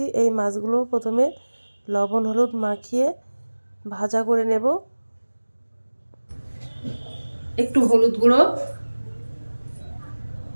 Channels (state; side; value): inverted; both; correlation -1.00